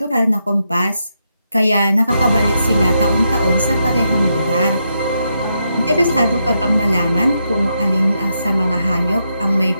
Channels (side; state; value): both; inverted; correlation -0.82